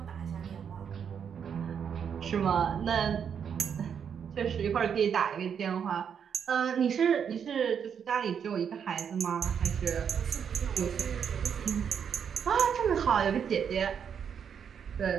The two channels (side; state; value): left; quieter; 7.6 dB